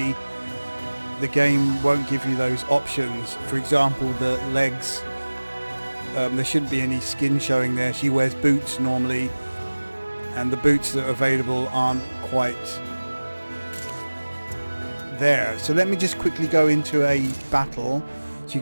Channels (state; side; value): inverted; both; correlation -1.00